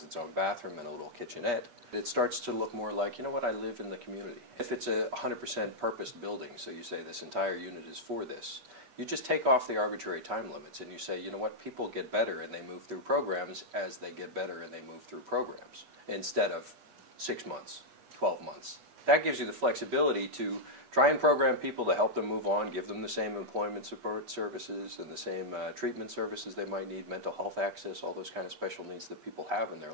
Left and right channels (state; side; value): late; left; 8.3 ms